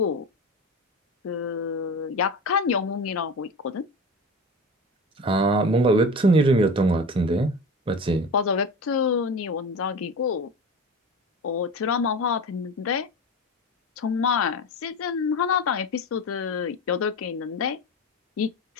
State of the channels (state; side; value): normal; both; correlation 0.30